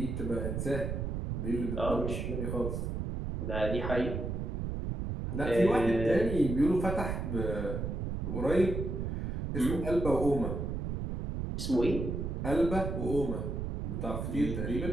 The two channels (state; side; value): noise; right; rumble, 2 dB below the sound